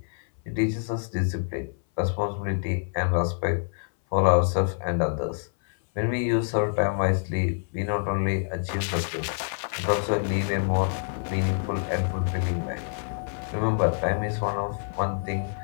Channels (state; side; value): silent; right; 58 dB below the other